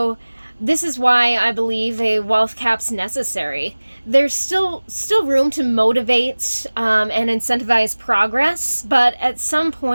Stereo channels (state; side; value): inverted; both; correlation -1.00